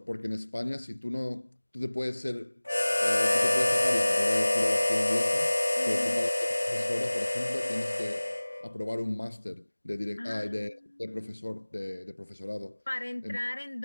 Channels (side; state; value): both; inverted; correlation -1.00